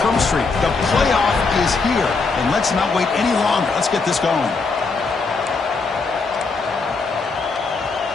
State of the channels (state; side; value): quieter; right; 4.3 dB